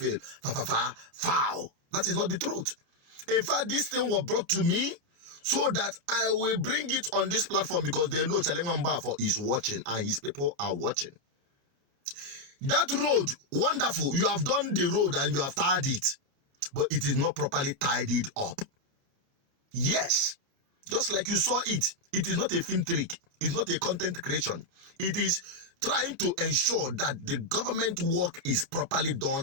Foul. That is not the truth. In fact, this thing was brought to me so that I will bring it on this platform because they know Chalemamba is watching and his people are watching. That road, wonderful. You have done the road and you have tied it, but it is not properly tidied up. Yes, just like you saw it. It is not a film trick. It's not a content creation. It is trying to ensure that the government work is properly done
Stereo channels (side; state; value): left; late; 28 ms